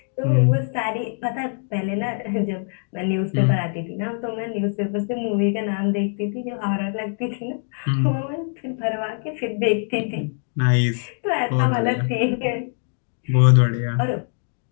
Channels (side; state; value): right; silent; 63 dB below the other